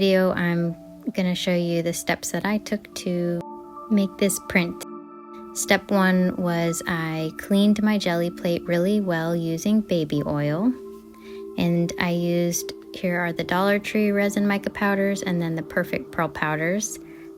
I'm going to show you the steps that I took to make this print. Step one was I cleaned my jelly plate really well using baby oil. And I used, here are the Dollar Tree resin mica powders and then the Perfect Pearl powders.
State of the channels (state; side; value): identical; both; correlation 1.00